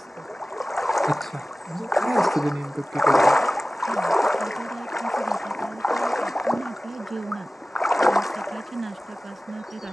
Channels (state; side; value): normal; both; correlation 0.97